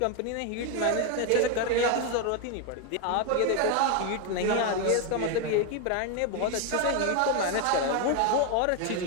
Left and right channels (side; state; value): both; different; correlation 0.01